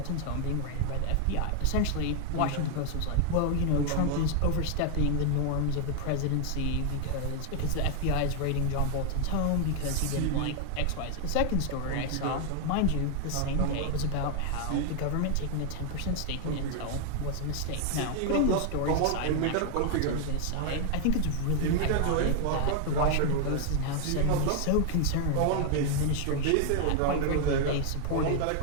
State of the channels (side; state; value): both; different; correlation 0.00